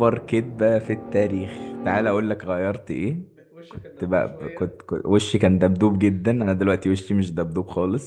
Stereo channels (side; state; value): both; identical; correlation 1.00